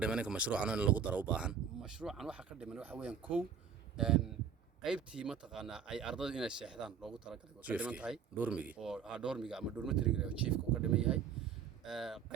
dhiman in mashruucan in lagu daro u baahan mashruucan waxa ka dhiman waxa weeyaan qaybtii mataqaana ay ardaydu inay seexdaan loogu talagalay oo ka dhiman tahay doormigi oo doormiga ama dormitoryga chiefka uu ka dhiman yahay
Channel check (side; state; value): left; quieter; 7.2 dB